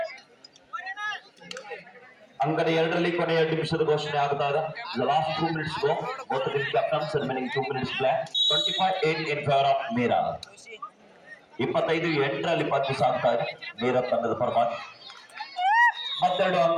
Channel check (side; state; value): both; identical; correlation 1.00